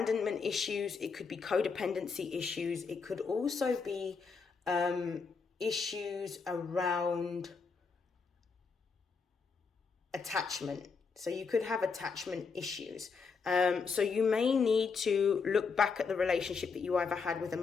issues, it could be codependency issues, it could also be issues around attachment. So you could have attachment issues. So you may need to look back at the relationship that you either had with a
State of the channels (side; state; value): right; quieter; 5.2 dB